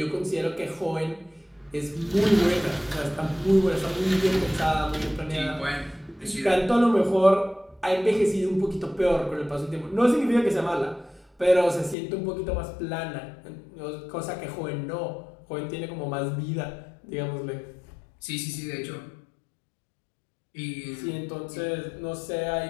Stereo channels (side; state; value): right; drops out; at 12.0 s